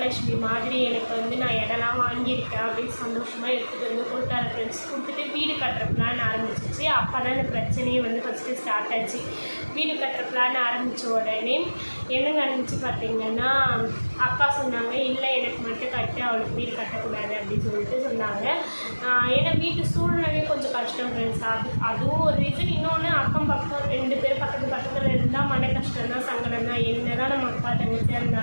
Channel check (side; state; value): both; inverted; correlation -1.00